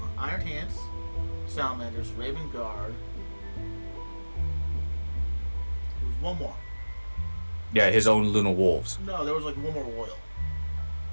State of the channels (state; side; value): inverted; both; correlation -1.00